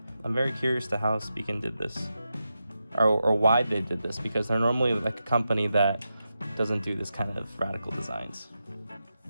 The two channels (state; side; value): inverted; both; correlation -0.89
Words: I'm very curious to how Spigen did this, or why they did this, because they're normally like a company that doesn't do this kind of radical designs